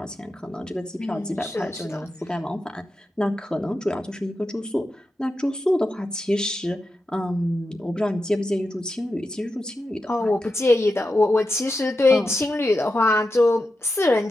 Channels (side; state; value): both; normal; correlation 0.89